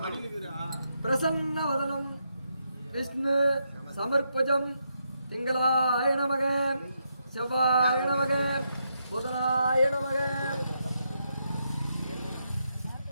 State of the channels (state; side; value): inverted; both; correlation -0.81